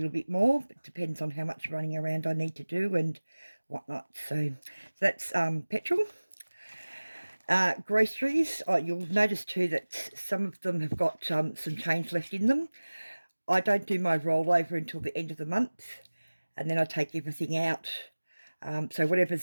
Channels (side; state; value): both; inverted; correlation -1.00